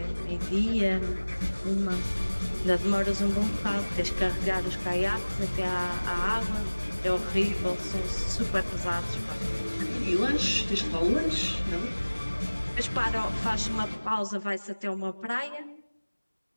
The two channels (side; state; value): both; inverted; correlation -1.00